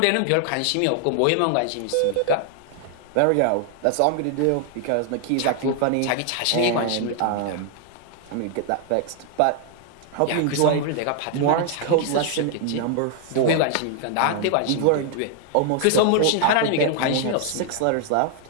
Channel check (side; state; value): both; different; correlation 0.00